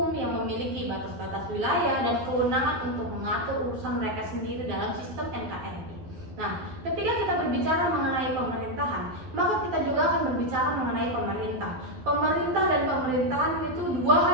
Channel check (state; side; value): late; left; 12 ms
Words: yang memiliki batas-batas wilayah dan kewenangan untuk mengatur urusan mereka sendiri dalam sistem NKRI. Nah, ketika kita berbicara mengenai pemerintahan, maka kita juga akan berbicara mengenai pemerintah. Pemerintah dan pemerintahan itu dua hal